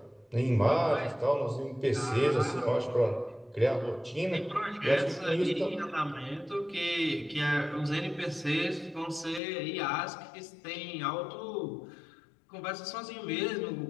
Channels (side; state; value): right; drops out; at 9.4 s